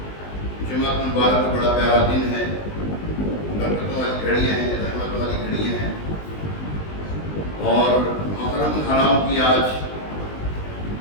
جمعہ مبارک بڑا پیارا دن ہے، برکتوں والی گھڑیاں ہیں، رحمت والی گھڑیاں ہیں، اور محرم الحرام کی آج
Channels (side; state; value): right; late; 20 ms